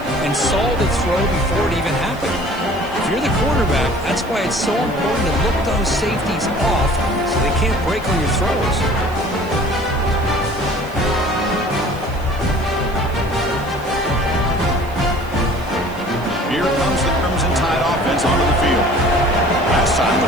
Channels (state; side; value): noise; right; hiss, 23 dB below the sound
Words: and saw the throw before it even happened. If you're the quarterback, that's why it's so important to look those safeties off so they can't break on your throws. Here comes the Crimson Tide offense onto the field. Last time